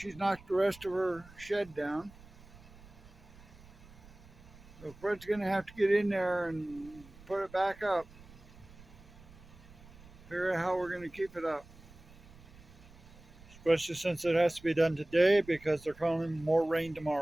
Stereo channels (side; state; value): right; noise; rumble, 21 dB below the sound